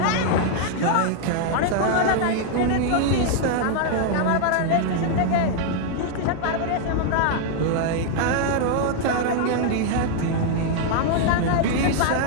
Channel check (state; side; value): different; both; correlation 0.00